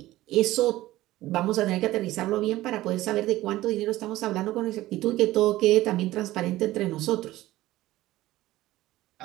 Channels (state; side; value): quieter; left; 16.5 dB